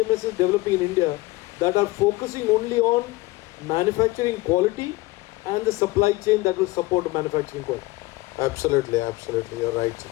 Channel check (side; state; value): right; quieter; 20.2 dB